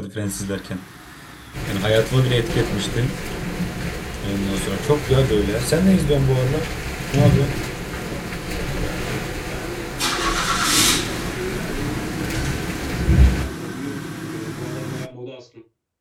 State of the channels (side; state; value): both; identical; correlation 1.00